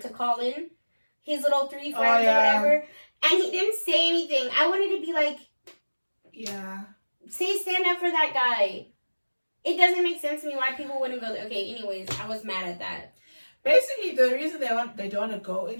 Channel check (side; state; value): both; inverted; correlation -1.00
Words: call in his little 3 friends or whatever, and he didn't say anything. I wanted to be like, stand up for that guy. It doesn't make sense to me why people wouldn't go there. Okay, anyways, I was mad at that. Basically, the reason they don't want to go